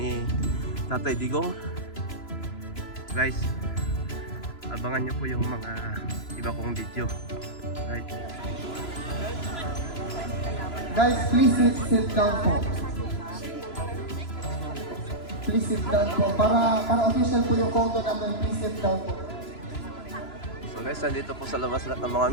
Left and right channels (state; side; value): late; right; 3.0 ms